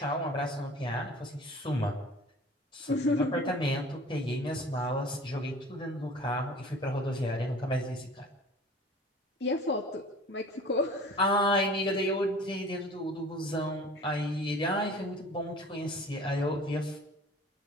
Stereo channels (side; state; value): both; normal; correlation 0.44